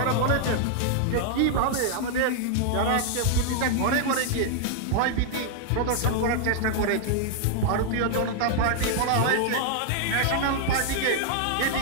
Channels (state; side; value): different; both; correlation 0.00